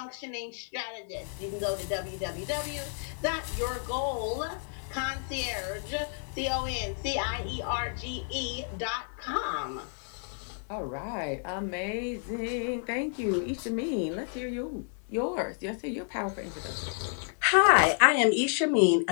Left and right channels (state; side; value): silent; right; 57 dB below the other